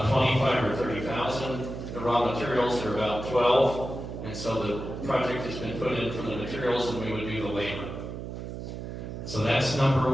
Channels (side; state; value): right; noise; hum, 8 dB below the sound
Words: 25 or 30,000. The raw materials are about 12, and so the project has been put in for the materials, and we would do the labor. So that's number